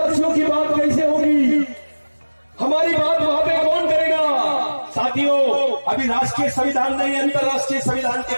की बात कैसे होगी, हमारी बात वहां पे कौन करेगा। साथियों, अभी राष्ट्रीय संविधान नहीं, अंतरराष्ट्रीय संविधान के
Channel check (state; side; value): inverted; both; correlation -1.00